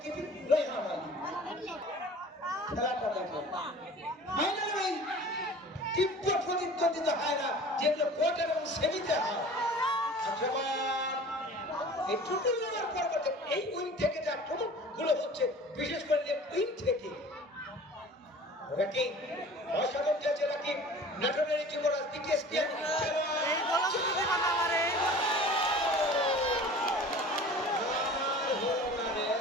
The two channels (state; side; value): normal; both; correlation 0.43